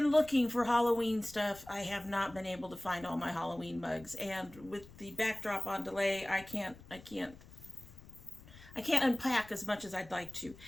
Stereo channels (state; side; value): noise; left; rumble, 20 dB below the sound